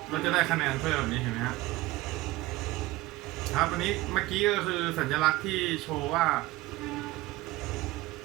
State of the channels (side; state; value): left; quieter; 18.8 dB